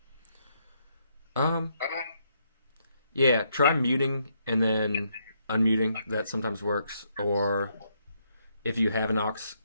Yeah, try muting and then unmuting. That sometimes works. Or if you have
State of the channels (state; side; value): inverted; both; correlation -0.75